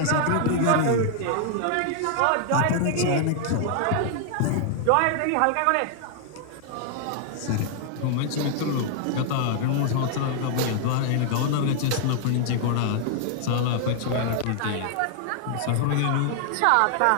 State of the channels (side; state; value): both; different; correlation 0.00